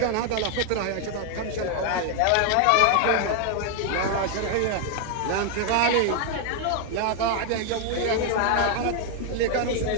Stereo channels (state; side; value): different; both; correlation 0.00